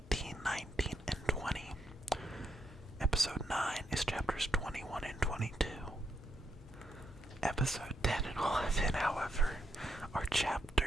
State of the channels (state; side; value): normal; both; correlation 0.80